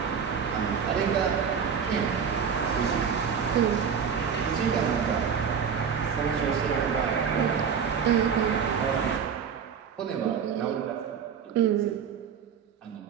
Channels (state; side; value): quieter; left; 7.0 dB